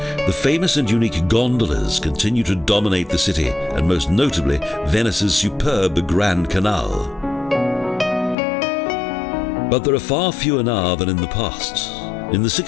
the famous and unique gondolas continue to dominate the city, and most notably Venice's superb Grand Canal. But there are far fewer now than in the past. In the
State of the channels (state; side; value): drops out; right; at 8.3 s